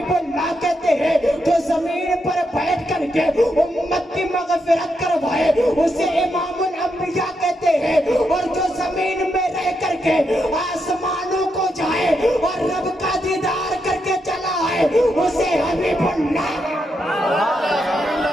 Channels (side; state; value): both; normal; correlation 0.82